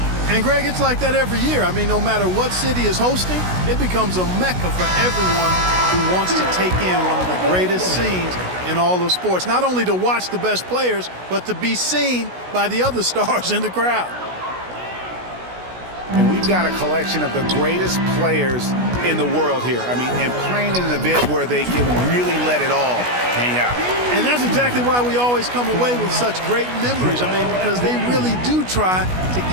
And, Greg, it's like that every year. I mean, no matter what city is hosting, it becomes a mecca for everyone who wants to take in one of the greatest scenes in all of sports. Not only to watch the best players, but to be seen by the other stars in the crowd. And we've got a collection of the greatest players in the world here. I mean, and playing in an event where they can really let it all hang out. And that's exactly why we always come away with such great memories. I mean, because they really do try to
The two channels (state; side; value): late; left; 16 ms